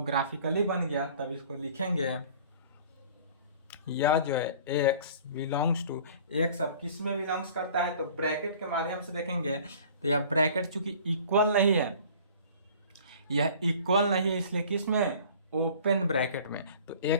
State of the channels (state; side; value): inverted; both; correlation -0.48